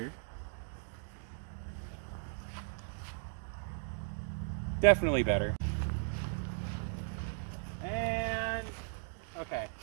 Definitely better. And okay.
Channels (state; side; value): silent; left; digital silence